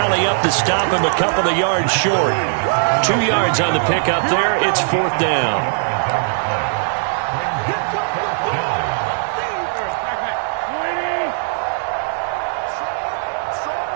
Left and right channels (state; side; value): silent; left; 63 dB below the other